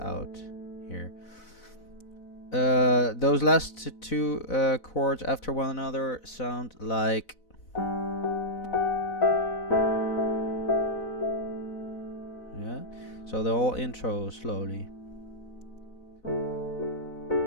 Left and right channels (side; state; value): right; late; 4.0 ms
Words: here. Those last two chords after one another sound like. Yeah. So the whole intro slowly.